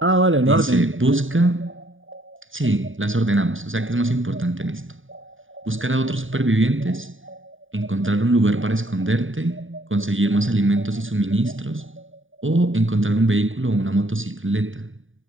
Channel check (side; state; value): left; late; 0.57 ms